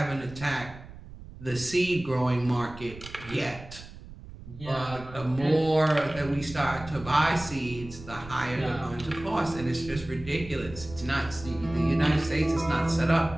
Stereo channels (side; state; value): right; noise; rumble, 15 dB below the sound